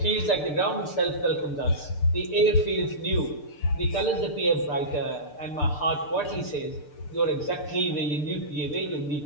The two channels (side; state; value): right; late; 6.8 ms